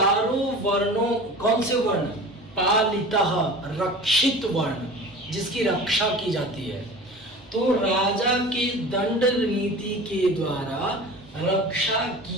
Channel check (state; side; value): normal; both; correlation 0.37